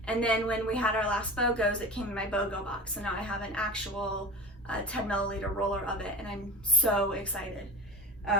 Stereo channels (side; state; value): both; normal; correlation 0.30